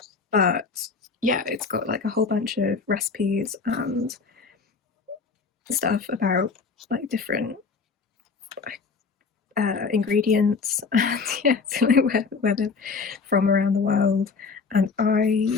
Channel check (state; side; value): quieter; right; 5.0 dB